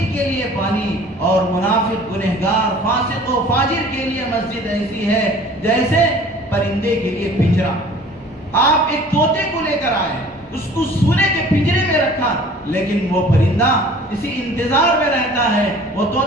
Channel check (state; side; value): normal; both; correlation 0.48